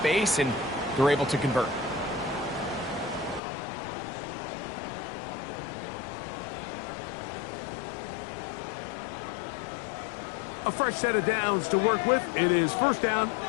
and they're able to convert. A fresh set of downs to work with. It is 1st down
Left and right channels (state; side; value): drops out; right; at 3.4 s